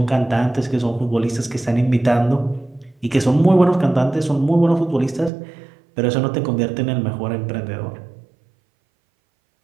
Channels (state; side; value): drops out; left; at 5.3 s